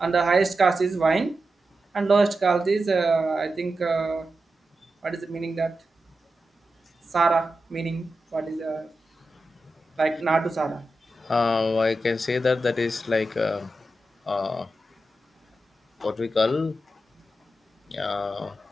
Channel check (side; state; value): both; normal; correlation 0.90